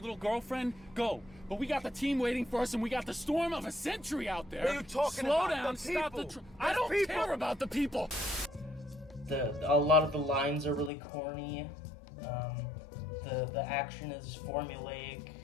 girlfriend? Go. But we got the team waiting for us, and we got the storm of a century out there. What are you talking Slow about? down, The stop the... people. I don't people. care about the people. A lot of the lines are really corny. The action is formulaic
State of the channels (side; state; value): right; drops out; at 10.9 s